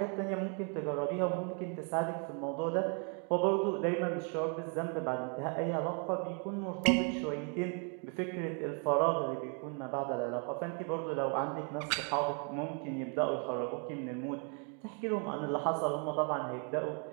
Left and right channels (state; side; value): quieter; left; 39.1 dB